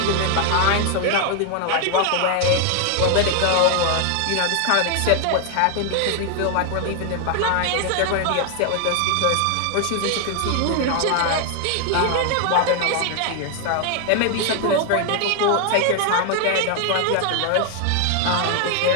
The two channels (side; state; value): both; different; correlation 0.00